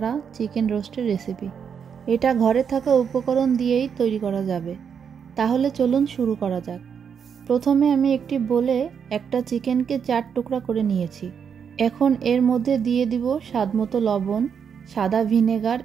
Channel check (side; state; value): left; quieter; 7.2 dB